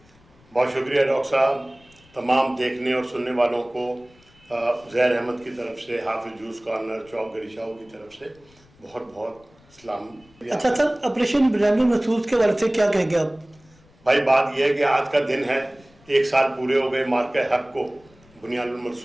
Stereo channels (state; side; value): noise; left; rumble, 29 dB below the sound